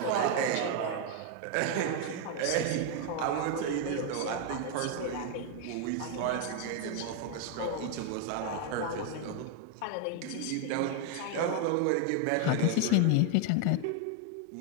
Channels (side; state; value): both; different; correlation 0.01